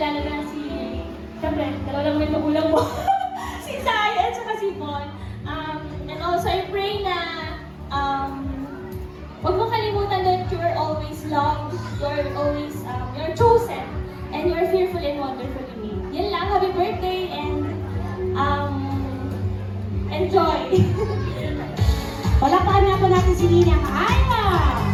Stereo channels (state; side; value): identical; both; correlation 1.00